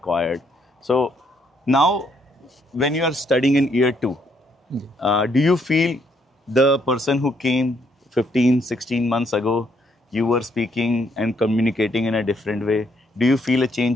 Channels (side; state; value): both; normal; correlation 0.72